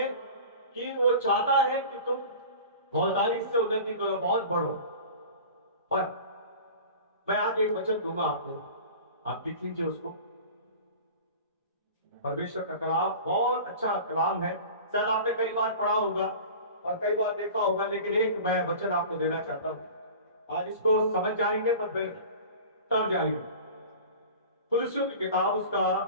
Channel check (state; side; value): inverted; both; correlation -0.38